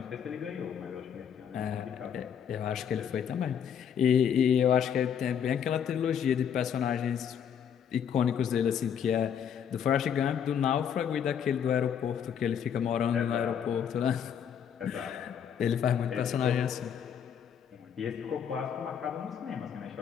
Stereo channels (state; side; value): quieter; right; 8.2 dB